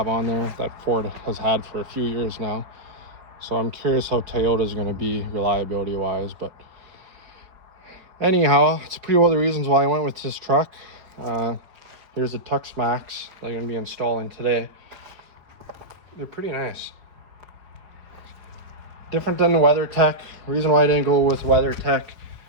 on there that Ford has had for a few years now. So I'm curious how Toyota is going to be reliability wise, but anyhow, it's pretty well the reasons why I went with this truck. Here's the Tux Max that I'm going to be installing today. They're pretty nice. Different than the WeatherTech. Reason why I didn't go with WeatherTech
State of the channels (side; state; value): left; late; 5.0 ms